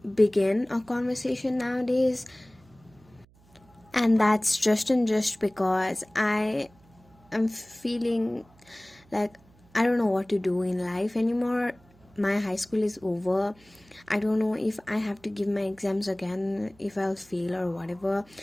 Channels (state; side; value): noise; right; hum, 29 dB below the sound